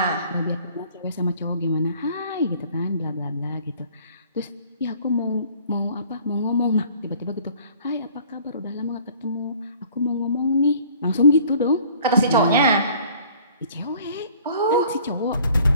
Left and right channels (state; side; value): inverted; both; correlation -0.53